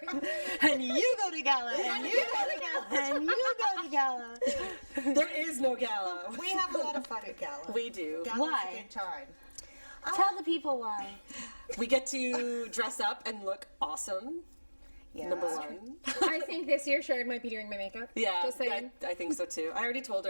And you go to GALA, and you go to GALA, and you go to GALA. There is no GALA. We have a lot of fun at Gala. We do. Gala's Why? a good time. Tell the people why. We get to dress up and look awesome. Yeah. Number one. I think this year Sharon might be doing my makeup. Yeah, Just saying. I think so too. I already told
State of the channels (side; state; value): both; inverted; correlation -1.00